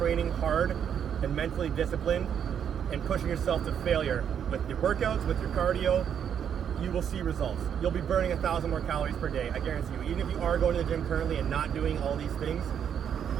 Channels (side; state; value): left; quieter; 8.4 dB